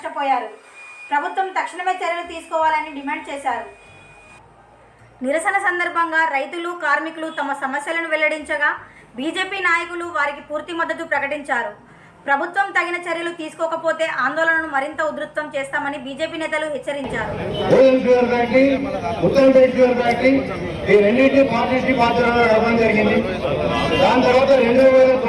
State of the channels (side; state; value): both; identical; correlation 1.00